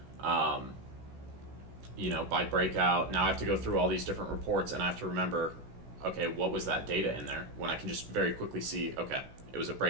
By breakout, now I have to go through all these different reports and I have to remember, okay, what was that data in there? When I can just very quickly see, okay, it was a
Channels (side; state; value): left; late; 16 ms